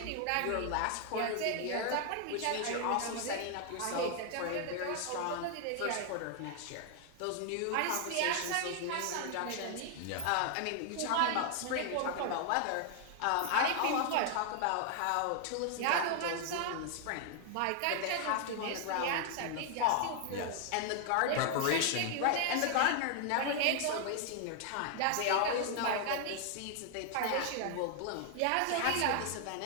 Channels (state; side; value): different; both; correlation 0.00